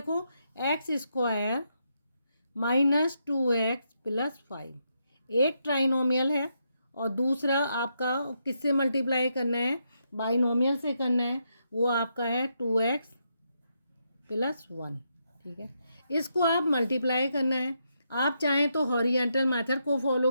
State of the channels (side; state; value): both; inverted; correlation -0.81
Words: x square minus 2x plus 5 एक ट्राइनोमियल है, और दूसरा आपका किससे मल्टीप्लाई करना है, बाइनोमियल से करना है, वो आपका है 2x प्लस 1। ठीक है, इसको आप मल्टीप्लाई करना है। आप चाहें तो हॉरिजेंटल मेथड को फॉलो